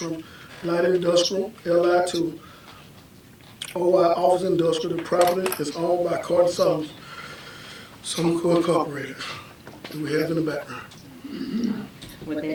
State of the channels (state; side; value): identical; both; correlation 1.00